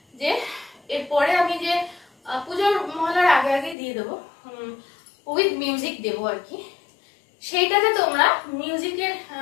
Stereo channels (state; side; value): drops out; right; at 3.8 s